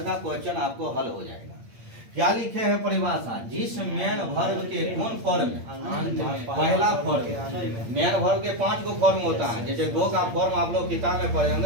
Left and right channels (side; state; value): left; late; 8.7 ms